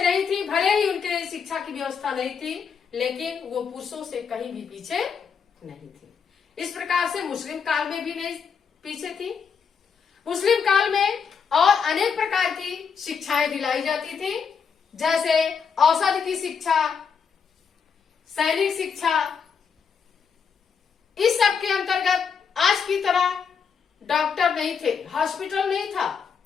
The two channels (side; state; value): right; quieter; 6.4 dB